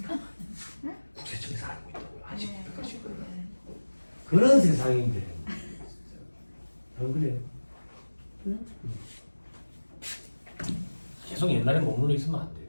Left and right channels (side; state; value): both; inverted; correlation -1.00